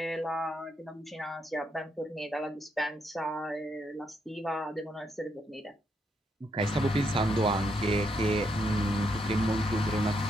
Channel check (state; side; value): normal; both; correlation 0.78